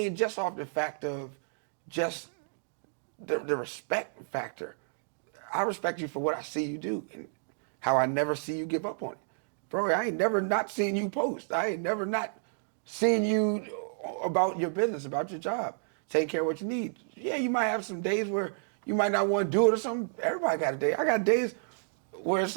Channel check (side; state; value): left; silent; digital silence